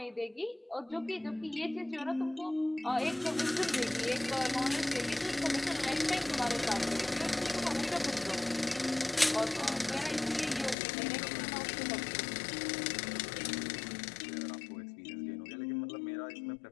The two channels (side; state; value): right; drops out; at 10.8 s